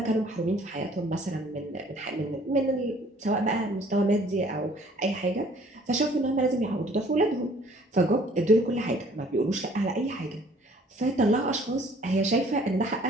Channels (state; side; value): normal; both; correlation 0.56